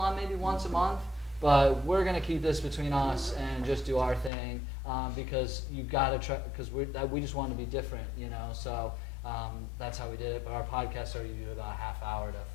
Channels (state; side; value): drops out; right; at 4.3 s